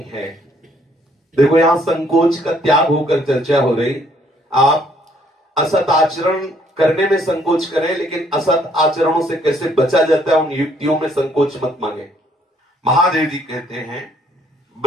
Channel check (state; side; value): normal; both; correlation 0.65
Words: है। देखो, यहां संकोच का त्याग होकर चर्चा हो रही। आप असत आचरण करने में संकोच करें, लेकिन असत आचरणों से कैसे बचा जाता है उन युक्तियों में संकोच मत मांगे। महादेव जी कहते हैं